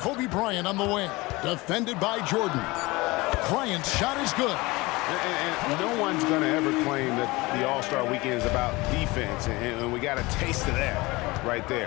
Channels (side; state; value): right; quieter; 22.4 dB